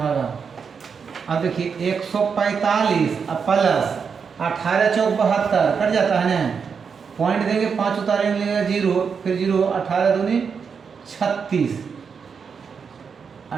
अब देखिए 145 अब प्लस 18 चौक 72 कट जाता है ना, पॉइंट देंगे 5 उतारेंगे 0, फिर 0 18 दूनी 36,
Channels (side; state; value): left; quieter; 6.1 dB